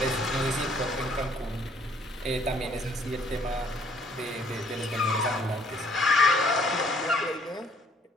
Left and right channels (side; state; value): both; normal; correlation 0.62